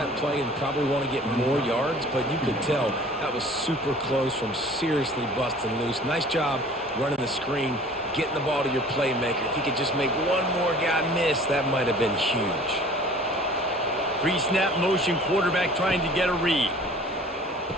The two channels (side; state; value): both; normal; correlation 0.48